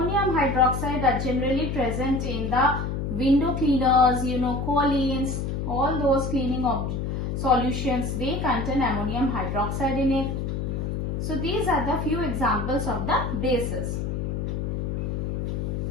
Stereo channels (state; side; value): noise; left; hum, 2 dB below the sound